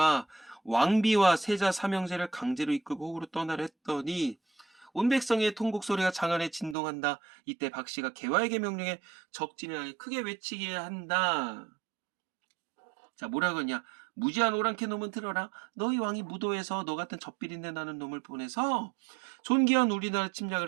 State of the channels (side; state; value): left; drops out; at 6.8 s